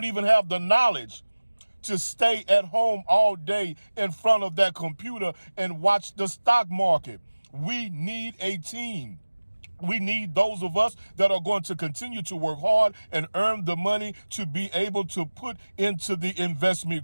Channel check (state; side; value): inverted; both; correlation -1.00